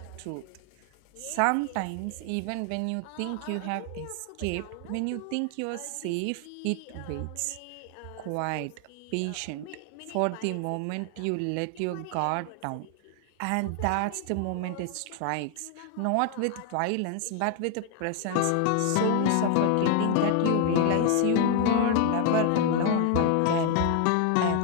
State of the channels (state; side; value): different; both; correlation 0.00